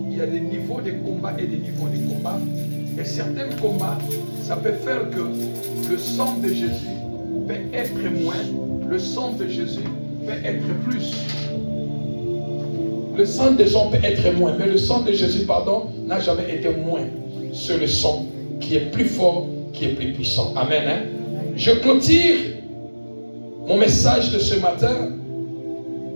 il y a des niveaux de combat et des niveaux de combat. Et certains combats, ça peut faire que le sang de Jésus peut être moins, le sang de Jésus peut être plus. Le sang des gens peut être moins, mais le sang de Jésus, n'a jamais été moins. C'est le sang qui est plus fort, qui est plus puissant. Amen. Hein? Je clôture mon message de ce matin.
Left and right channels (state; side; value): inverted; both; correlation -1.00